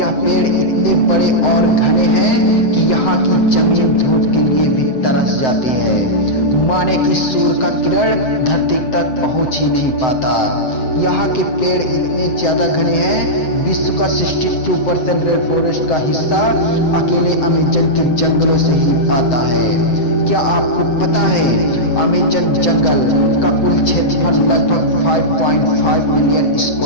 पेड़ इतने बड़े और घने हैं कि यहाँ की जमीन धूप के लिए भी तरस जाती है। माने कि सूर्य का किरण धरती तक पहुंच ही नहीं पाता। यहाँ के पेड़ इतने ज्यादा घने हैं, विश्व का 62% रेन फॉरेस्ट का हिस्सा अकेले अमेज़न के जंगलों से ही आता है। क्या आपको पता है अमेज़न जंगल का कुल क्षेत्रफल लगभग 5.5 मिलियन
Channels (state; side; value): late; right; 7.8 ms